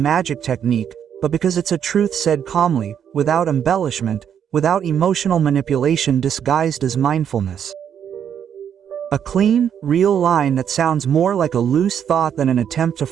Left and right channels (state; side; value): quieter; left; 8.6 dB